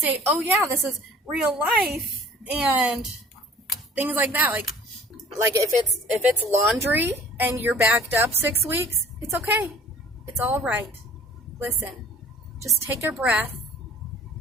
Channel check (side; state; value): both; normal; correlation 0.50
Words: oh yeah, this is real life and things like that. Like if it's laundry and you're backed up 6 weeks, it's okay. It's all right. Listen, just take a breath.